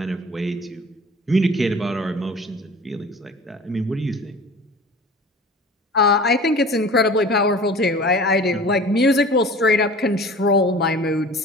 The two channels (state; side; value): normal; both; correlation 0.41